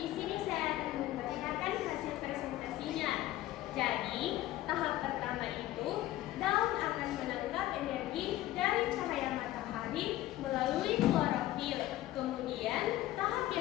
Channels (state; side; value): quieter; right; 15.2 dB